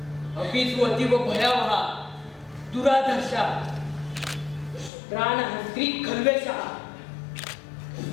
अपि तु अतीव भयावहा दुराधर्षा प्राणहन्त्री खल्वेषः।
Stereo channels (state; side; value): drops out; right; at 4.9 s